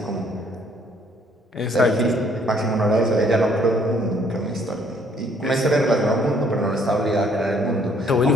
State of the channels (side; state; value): both; normal; correlation 0.64